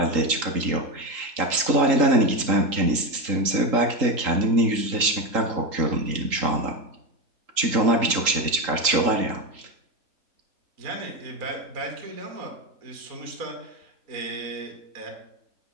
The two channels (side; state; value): left; late; 3.8 ms